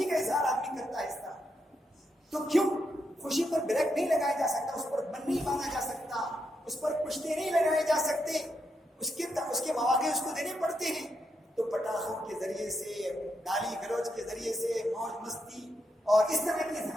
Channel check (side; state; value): both; normal; correlation 0.82